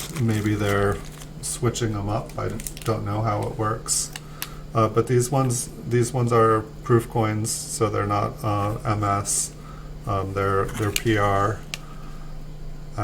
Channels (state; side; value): identical; both; correlation 1.00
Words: Maybe they're switching them up. I don't know how it works. But these ones are proof coins, so they're not MS. They're PR,